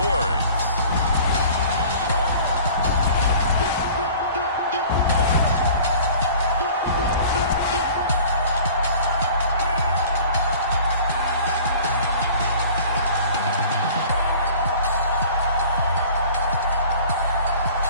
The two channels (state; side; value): inverted; both; correlation -0.46